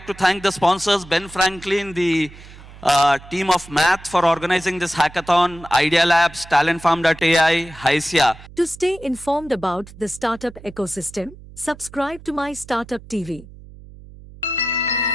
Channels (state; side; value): noise; right; hum, 19 dB below the sound